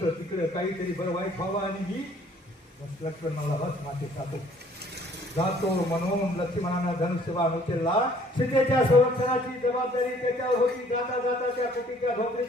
तिकडे काहीतरी बरं वाईट व्हावं आणि मी लक्ष्मण मला बस माते जातो म्हणून लक्ष्मणानं धनुष्यबाण उचलला. सीतेच्या संरक्षणाची जबाबदारी त्याच्यावर होती. जाता जाता त्या कुटीच्या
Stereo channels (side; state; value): both; normal; correlation 0.58